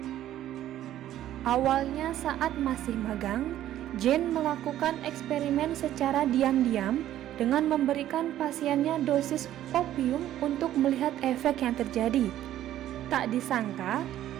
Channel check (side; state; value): left; quieter; 12.6 dB